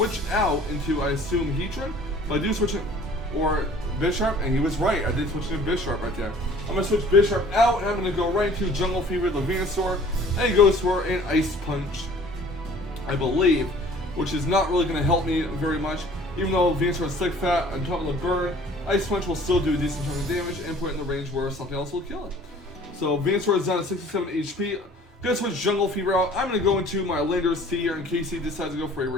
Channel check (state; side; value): normal; both; correlation 0.51